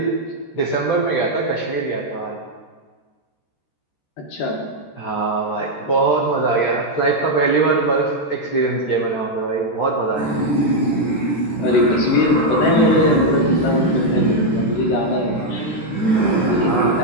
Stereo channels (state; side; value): late; right; 13 ms